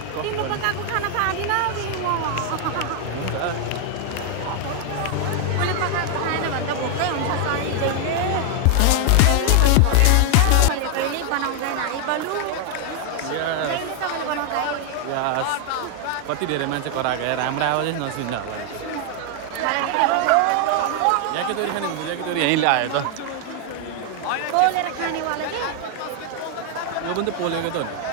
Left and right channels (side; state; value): both; different; correlation 0.00